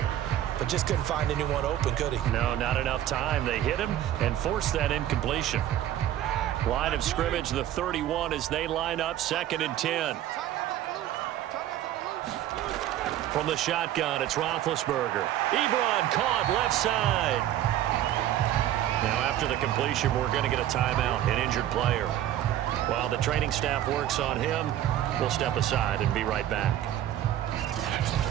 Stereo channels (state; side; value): quieter; left; 12.2 dB